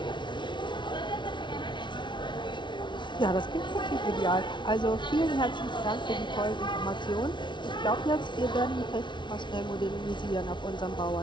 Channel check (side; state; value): right; late; 0.23 ms